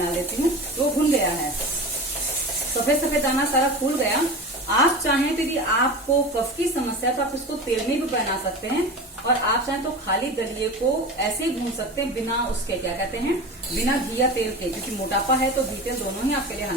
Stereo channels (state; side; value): normal; both; correlation 0.30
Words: देती हूँ। तो भुन गया है, सफेद सफेद दाना सारा फूल गया। आप चाहें तो यदि आपको कफ की समस्या है तो आप इसको तेल में भी बना सकते हैं, और आप चाहें तो खाली दलिये को ऐसे ही भून सकते हैं, बिना उसके, क्या कहते हैं, बिना घी या तेल के। क्योंकि मोटापा है तो घी तेल दोनों ही आपके लिए